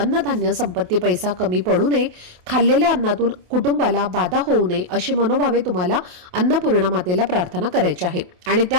संपत्ती, पैसा कमी पडू नये, खाल्लेल्या अन्नातून कुटुंबाला बाधा होऊ नये अशी मनोभावे तुम्हाला अन्नपूर्णा मातेला प्रार्थना करायची आहे. आणि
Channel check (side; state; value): left; late; 28 ms